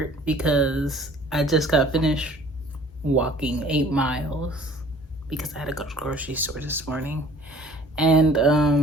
because I just got finished walking 8 miles because I had to go to the grocery store this morning. And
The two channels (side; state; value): both; normal; correlation 0.51